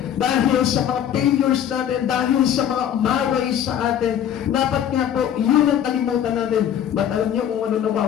dahil sa mga failures natin, dahil sa mga umaway sa atin. Dapat nga po, yun ang kalimutan natin. But alam niyo kung ano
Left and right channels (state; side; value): quieter; right; 9.8 dB